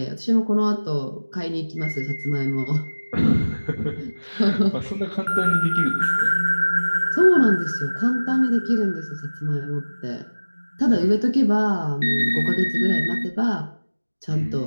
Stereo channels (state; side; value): inverted; both; correlation -1.00